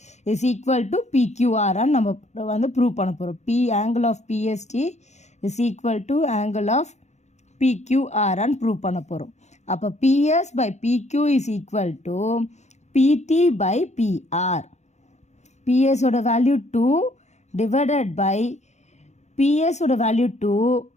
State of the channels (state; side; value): late; right; 0.33 ms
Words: is equal to PQRன்னு நம்ம வந்து ப்ரூவ் பண்ண போகிறோம். angle of PST is equal to angle of PQRன்னு ப்ரூவ் பண்ண போகிறோம். அப்போ PS by PQ is equal to PT by PR. PS ஓட வேல்யூ 2 divided by PS ஓட வேல்யூ 2,